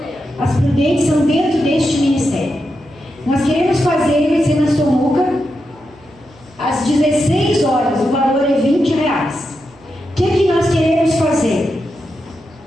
As prudentes são dentro deste ministério. Nós queremos fazer, vai ser na Somuca, às 16 horas, o valor é R$20. O que nós queremos fazer?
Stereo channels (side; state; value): right; noise; hum, 28 dB below the sound